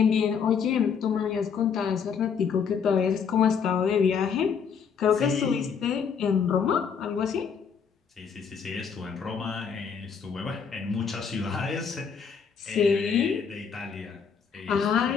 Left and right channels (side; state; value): right; quieter; 6.6 dB